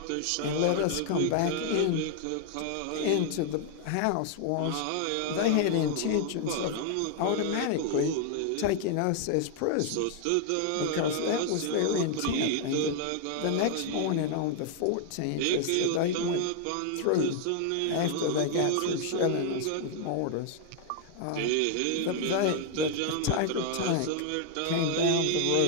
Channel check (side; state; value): both; different; correlation 0.00